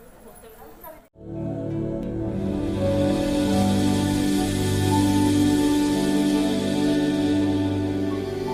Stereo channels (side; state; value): both; identical; correlation 1.00